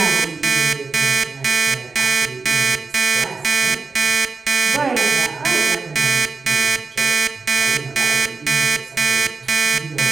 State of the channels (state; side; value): quieter; left; 4.3 dB